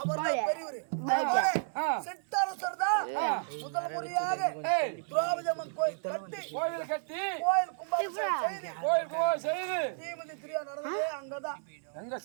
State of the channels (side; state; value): left; silent; 56 dB below the other